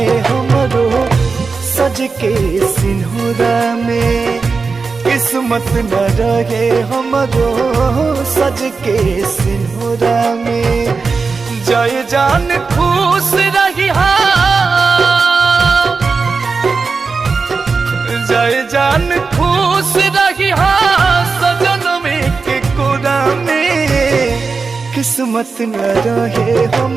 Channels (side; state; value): left; quieter; 4.6 dB